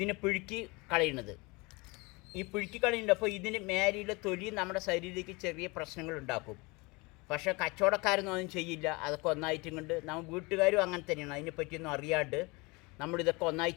പിഴുക്കി കളയുന്നത്. ഈ പിഴുക്കി കളയുന്നുണ്ട്. അപ്പോൾ ഇതിന് മേലെയുള്ള തൊലി നമ്മുടെ ശരീരത്തിലേക്ക് ചെറിയ പ്രശ്നങ്ങൾ ഉണ്ടാക്കും. പക്ഷേ കച്ചവടക്കാരൊന്നും ഒന്നും ചെയ്യില്ല. അതൊക്കെ ഒന്നായിട്ടും കൊണ്ട് നമ്മൾ വീട്ടുകാരും അങ്ങനെ തന്നെയാണ്. അതിനെപ്പറ്റിയൊന്നും അറിയാണ്ട് നമ്മളിതൊക്കെ ഒന്നായി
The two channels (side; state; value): right; quieter; 26.1 dB